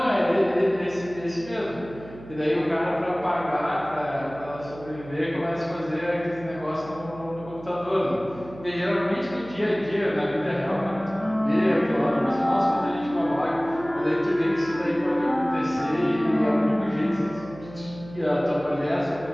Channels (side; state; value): right; noise; hum, 17 dB below the sound